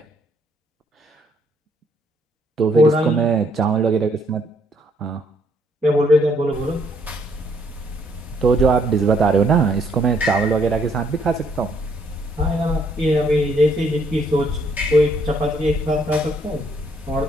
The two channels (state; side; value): normal; both; correlation 0.69